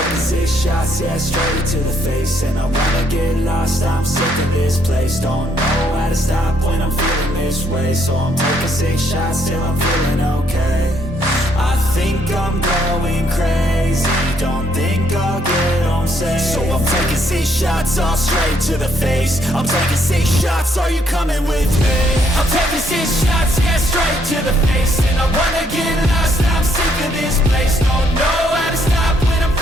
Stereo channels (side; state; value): both; normal; correlation 0.70